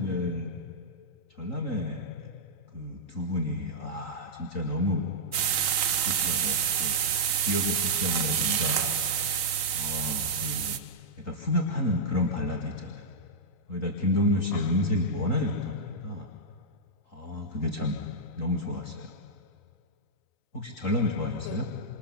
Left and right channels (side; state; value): right; late; 3.9 ms